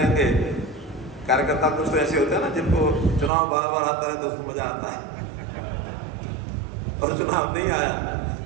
कार्यकर्ता कुछ तो ऐसे होते हैं ना जिनको चुनाव बार बार आता है तो उसको मजा आता है, और चुनाव नहीं आया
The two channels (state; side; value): drops out; left; at 3.3 s